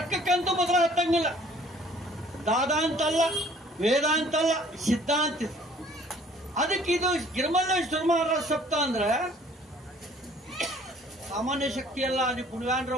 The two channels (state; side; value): normal; both; correlation 0.56